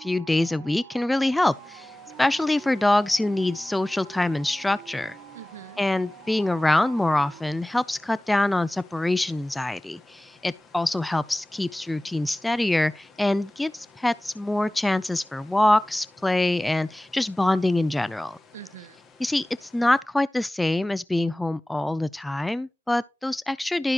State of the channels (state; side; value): normal; both; correlation 0.98